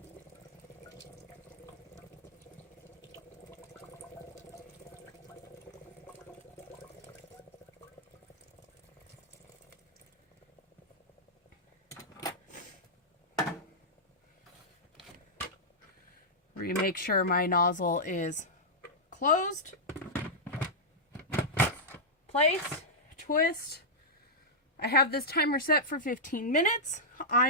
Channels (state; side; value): normal; both; correlation -0.09